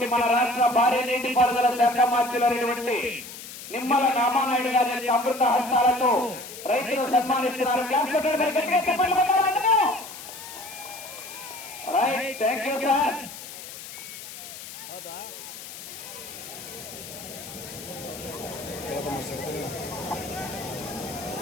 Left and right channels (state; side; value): noise; left; hiss, 12 dB below the sound